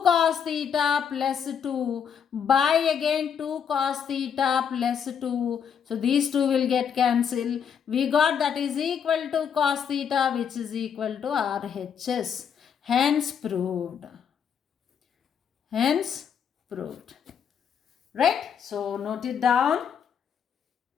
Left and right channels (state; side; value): quieter; right; 7.6 dB